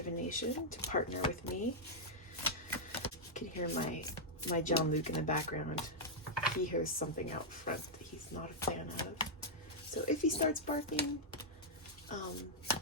to partner with me. You can hear my John Luke in the background. He hears something out front that he's not a fan of. So if he starts barking,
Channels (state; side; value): normal; both; correlation -0.06